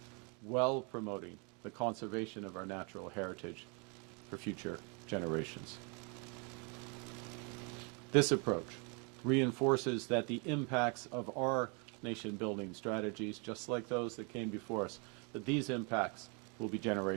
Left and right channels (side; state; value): left; quieter; 34.2 dB